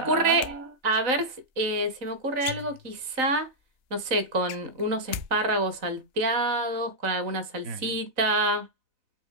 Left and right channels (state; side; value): late; left; 3.9 ms